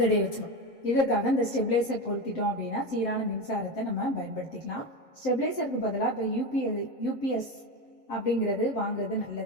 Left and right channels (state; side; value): late; right; 7.8 ms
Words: வச்சிடும். இதற்காக இந்த ஸ்டெபிளைசர் பொருத்திட்டோம் அப்படின்னா சீரான மின்சாரத்தை நம்ம பயன்படுத்திக்கலாம். ஸ்டெபிளைசருக்கு பதிலாக இப்போ UPS அப்படிங்கிறது வாங்குறது